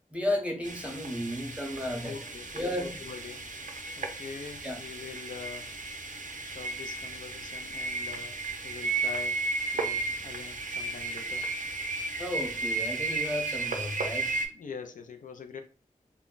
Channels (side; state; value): both; normal; correlation 0.38